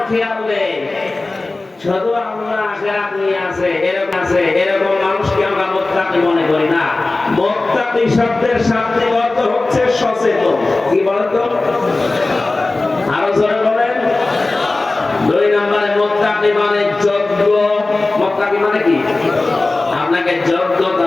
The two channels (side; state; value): right; quieter; 3.2 dB